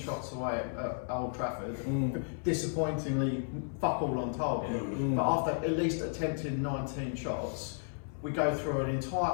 away at Old Trafford, disappointingly fuck all on target, but after at least attempting 19 shots, we go through an entire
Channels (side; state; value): right; silent; 56 dB below the other